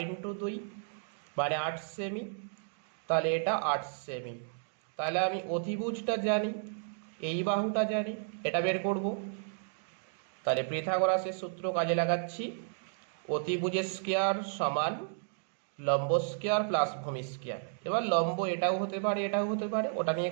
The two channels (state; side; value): silent; left; digital silence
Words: ইন্টু 2 মানে 8 সেমি, তাহলে এটা 8 সেমি। তাহলে আমি অতিভুজটা জানি, এই বাহুটা জানি, এটা বের করব। তাহলে পিথাগোরাসের সূত্র কাজে লাগাচ্ছি, অতিভুজ স্কয়ার সমান লম্ব স্কয়ার প্লাস ভূমি স্কয়ার। এবার লম্ব এটাও হতে পারে এটাও হতে পারে, ওটা নিয়ে